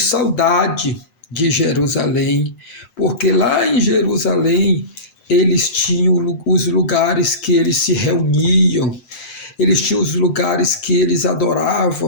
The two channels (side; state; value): right; late; 8.8 ms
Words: de Jerusalém, porque lá em Jerusalém eles tinham os lugares que eles se reuniam, eles tinham os lugares que eles